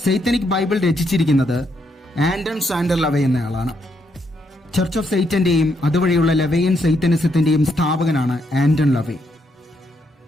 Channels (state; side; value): normal; both; correlation 0.77